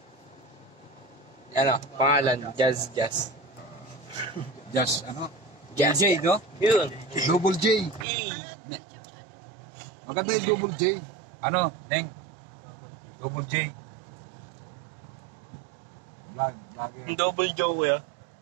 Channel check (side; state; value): left; drops out; at 8.1 s